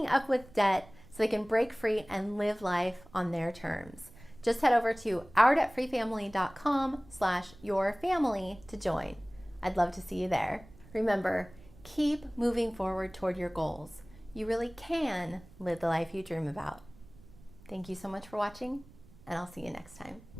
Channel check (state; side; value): noise; right; rumble, 22 dB below the sound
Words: up with debt so they can break free and live life on their terms. Just head over to ourdebtfreefamily.com/yourfamily to join. I'd love to see you there. Remember, keep moving forward toward your goals. You really can live the life you dream about. Thank you so much for watching, and I'll see you next time.